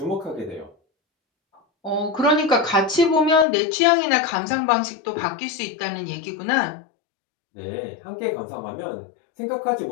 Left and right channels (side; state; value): right; drops out; at 3.5 s